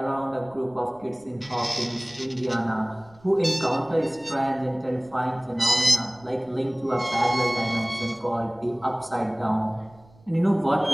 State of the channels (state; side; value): noise; right; rumble, 27 dB below the sound